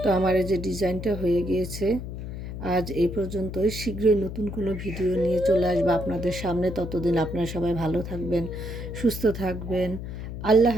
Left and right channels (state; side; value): noise; left; hum, 8 dB below the sound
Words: তো আমার এই যে ডিজাইনটা হয়ে গিয়েছে। আজ এই পর্যন্তই। শীঘ্রই নতুন কোনো ভিডিও নিয়ে চলে আসবো আপনাদের সামনে। ততদিন আপনারা সবাই ভালো থাকবেন, সুস্থ থাকবেন। আল্লাহ